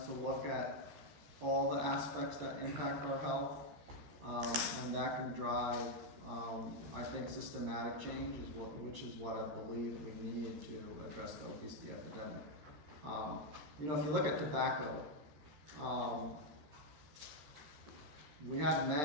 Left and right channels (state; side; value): late; left; 14 ms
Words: to look at all the aspects that impact our health, and that can drive, I think, systematic change, which is what I believe we need to address the obesity epidemic. If you look at tobacco, we had